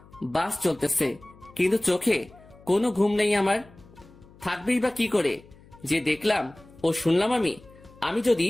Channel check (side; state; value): left; noise; hum, 24 dB below the sound